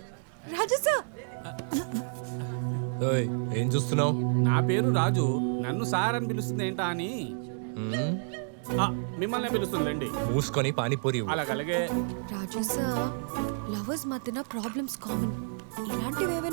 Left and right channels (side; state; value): left; silent; digital silence